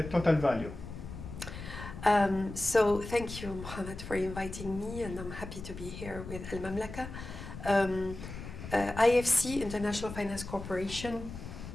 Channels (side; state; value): left; noise; rumble, 10 dB below the sound